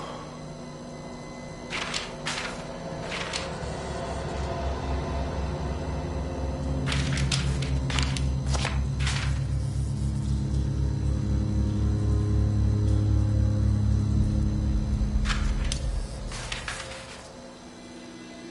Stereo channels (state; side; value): identical; both; correlation 1.00